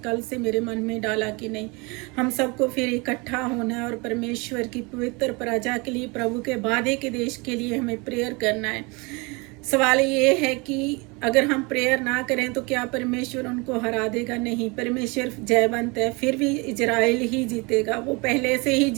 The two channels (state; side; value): quieter; left; 28.2 dB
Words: से मेरे मन में डाला कि नहीं, हम सबको फिर इकट्ठा होना है और परमेश्वर की पवित्र प्रजा के लिए, प्रभु के वादे के देश के लिए हमें प्रेयर करना है। सवाल ये है कि अगर हम प्रेयर ना करें तो क्या परमेश्वर उनको हरा देगा? नहीं, परमेश्वर जयवंत है, फिर भी इजराइल ही जीतेगा, वो पहले से ही